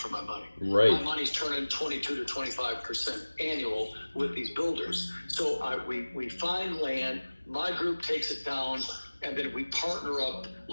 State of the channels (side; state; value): both; inverted; correlation -1.00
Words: my money. Right. My money's turning 22 to 25% annual with these builders. So we find land, my group takes it down, and then we partner up a